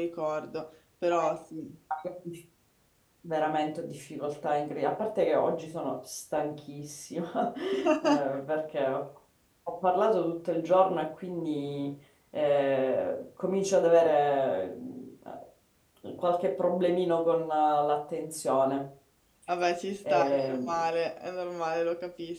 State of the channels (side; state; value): both; identical; correlation 1.00